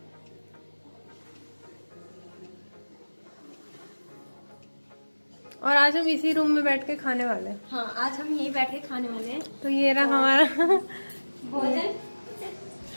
और आज हम इसी रूम में बैठ के खाने वाले हैं। हाँ, आज हम यहीं बैठ के खाने वाले हैं। तो ये रहा हमारा भोजन।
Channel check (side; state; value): both; inverted; correlation -1.00